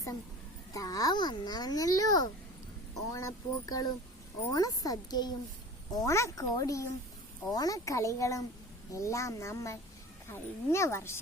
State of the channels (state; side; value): normal; both; correlation 0.38